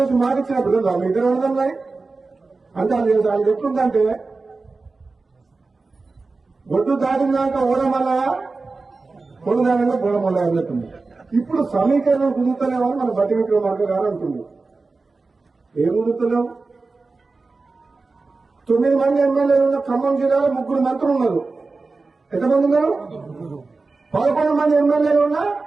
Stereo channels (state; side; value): quieter; left; 3.8 dB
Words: మాటిచ్చినప్పుడు కదా మీ ఇద్దరు అర్థం అంటే అది ఎట్లుందంటే ఒడ్డు దాటినాక ఓడమల్ల పొడుదానంగా బోడమల్ల అన్నట్టుంది. ఇప్పుడు సమీకరణం కుదురుతలేమని మన బట్టి విక్రమార్క గారు అంటుంది. ఏం కుదురుతలేవు? 9 మంది ఎమ్మెల్యేలు ఉన్న ఖమ్మం జిల్లాలో 3 మంత్రులు ఉన్నారు. ఎంతమంది ఉన్నారు? 11 మంది ఎమ్మెల్యేలు ఉన్నా